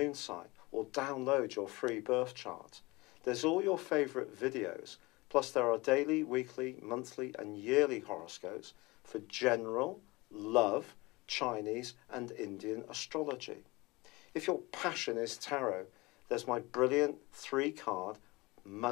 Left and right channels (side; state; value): right; quieter; 23.1 dB